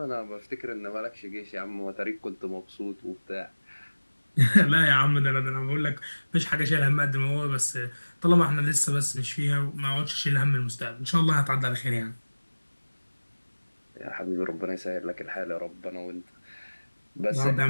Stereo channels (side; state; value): both; inverted; correlation -1.00